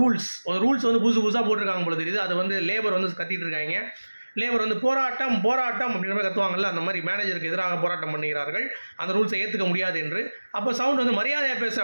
ஒரு ரூல்ஸ் வந்து புதுசாக போட்டிருக்காங்க போல தெரியுது. அது வந்து லேபர் வந்து கத்திட்டு இருக்காங்க. லேபர் வந்து போராட்டம் அப்படின்ற மாதிரி கத்துவாங்கல்ல, அந்த மாதிரி மேனேஜருக்கு எதிராக போராட்டம் பண்ணுகிறார்கள், அந்த ரூல்ஸை ஏற்றுக்க முடியாது என்று. அப்போ சவுண்ட் வந்து மரியாதையாக பேச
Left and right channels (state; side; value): inverted; both; correlation -1.00